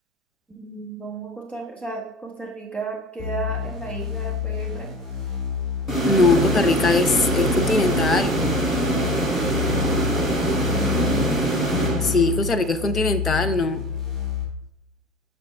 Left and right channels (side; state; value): both; normal; correlation 0.37